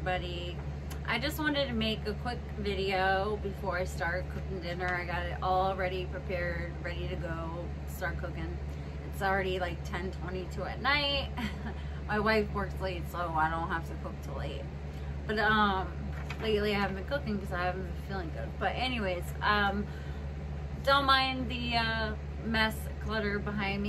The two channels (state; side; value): identical; both; correlation 1.00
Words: I just wanted to make a quick video before I start cooking dinner. I got it all ready, prepared, ready to go, start cooking. It's already like 10:22 at night. My wife works late, so I don't have to cook till 8. But lately I haven't been cooking because I haven't been feeling good. But anyways, don't mind the mess, clutter behind